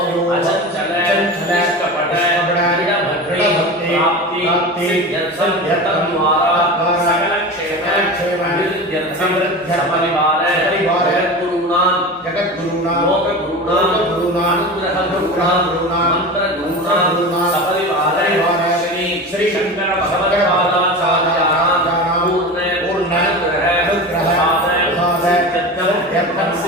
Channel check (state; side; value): normal; both; correlation 0.29